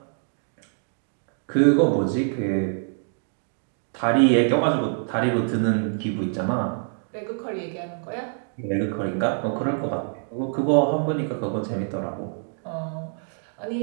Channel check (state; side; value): silent; left; 61 dB below the other